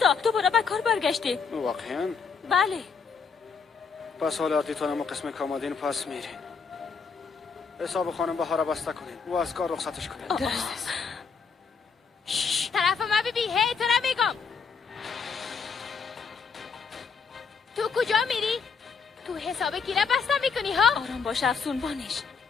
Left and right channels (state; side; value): quieter; right; 5.6 dB